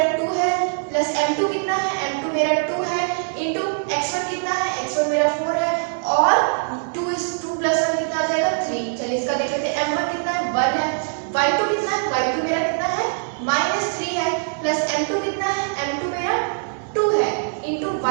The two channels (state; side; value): silent; left; 64 dB below the other